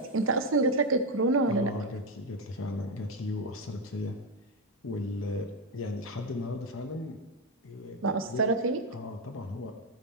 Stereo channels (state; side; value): normal; both; correlation 0.07